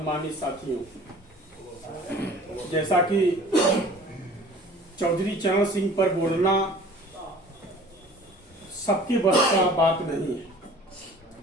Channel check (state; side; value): normal; both; correlation 0.47